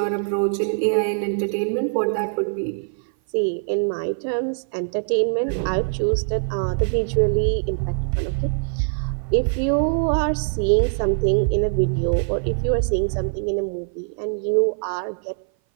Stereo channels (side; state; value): left; silent; 58 dB below the other